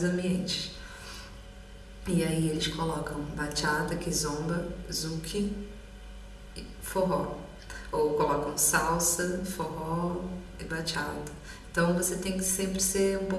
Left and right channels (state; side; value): identical; both; correlation 1.00